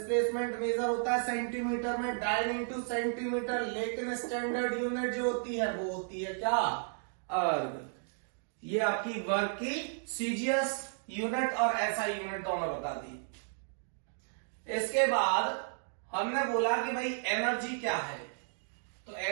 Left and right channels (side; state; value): left; silent; digital silence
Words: मेजर होता है सेंटीमीटर में, डाइन इंटू सेंटीमीटर। लेकिन स्टैंडर्ड यूनिट जो होती है वो होती है क्या, अर्ग। ये आपकी वर्क की सीजीएस यूनिट और एसआई यूनिट दोनों बता दी। इसके बाद हमने बोला कि भाई एनर्जी क्या है, तो